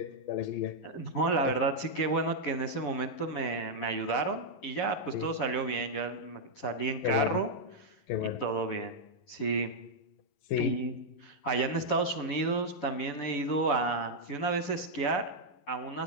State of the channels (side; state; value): right; late; 11 ms